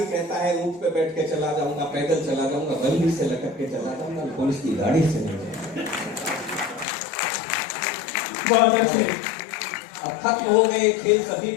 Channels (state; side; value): drops out; right; at 6.9 s